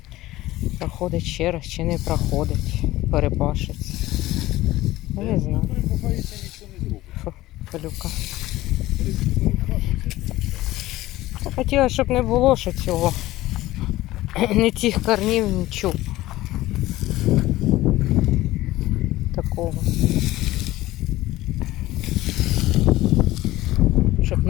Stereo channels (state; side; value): quieter; right; 16.8 dB